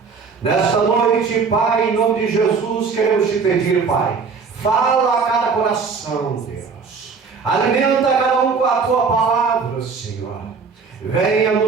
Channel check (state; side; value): quieter; left; 5.2 dB